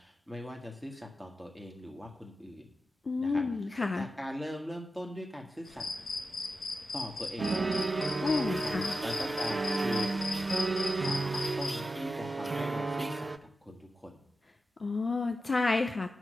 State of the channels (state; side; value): normal; both; correlation 0.91